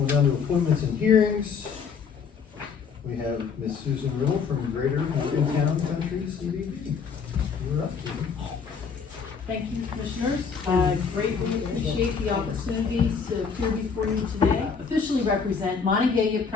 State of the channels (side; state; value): right; quieter; 5.9 dB